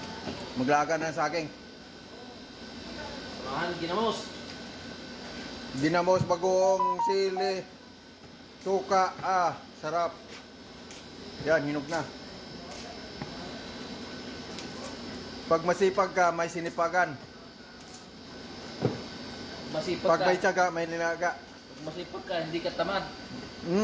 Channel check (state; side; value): identical; both; correlation 1.00